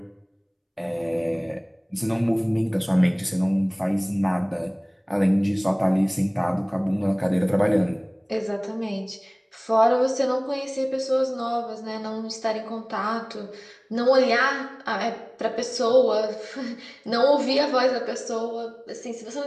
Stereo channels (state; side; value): identical; both; correlation 1.00